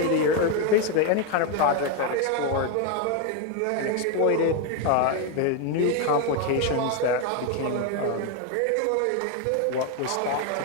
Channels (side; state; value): both; different; correlation 0.01